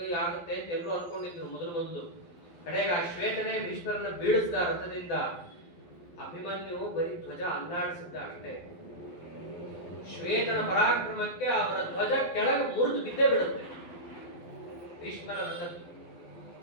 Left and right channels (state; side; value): late; right; 12 ms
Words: ಆಗುತ್ತೆ ಅಂತ ಎಲ್ಲರೂ ಅನ್ಕೊಂಡಿದ್ರು ಮೊದಲು. ಕಡೆಗೆ ಆ ಶ್ವೇತನೇ ಭೀಷ್ಮರನ್ನ ಬೀಳಿಸಿದ ರಥದಿಂದ. ಅಭಿಮನ್ಯು ಬರೀ ಧ್ವಜ ಅಲ್ಲಾಡಿಸಿದ್ದ ಅಷ್ಟೇ. ಶ್ವೇತನ ಪರಾಕ್ರಮಕ್ಕೆ ಅವರ ಧ್ವಜ ಕೆಳಗೆ ಮುರಿದು ಬಿದ್ದೇ ಬಿಡುತ್ತೆ ಭೀಷ್ಮರ ರಥದ್ದು.